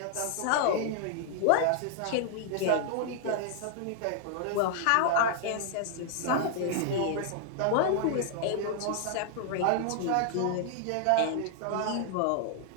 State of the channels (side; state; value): both; different; correlation -0.01